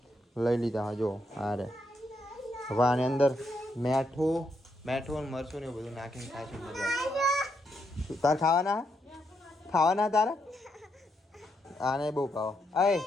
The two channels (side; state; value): both; normal; correlation 0.79